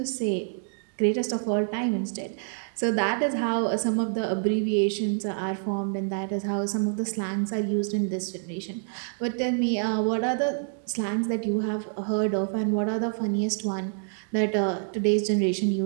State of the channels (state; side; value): silent; left; 60 dB below the other